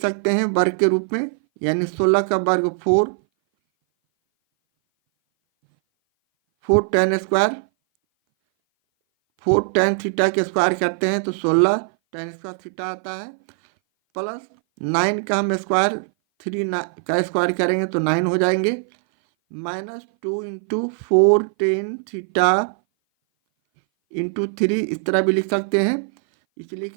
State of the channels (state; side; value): silent; left; 59 dB below the other